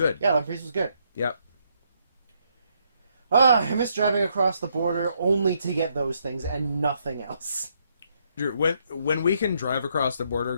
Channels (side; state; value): both; inverted; correlation -0.74